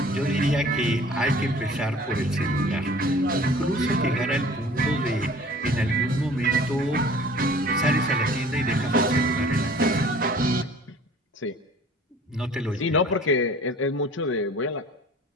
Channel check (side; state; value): both; normal; correlation 0.48